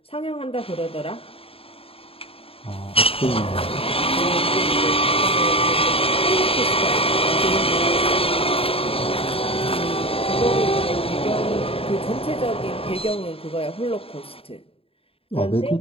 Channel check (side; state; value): right; late; 0.27 ms